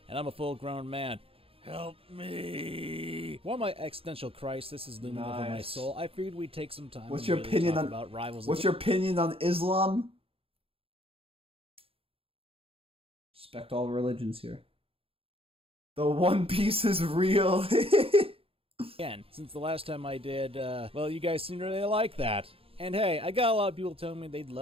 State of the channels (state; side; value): late; left; 0.27 ms